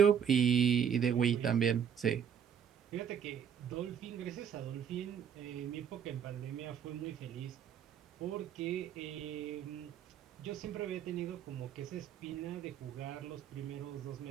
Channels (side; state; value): left; quieter; 8.1 dB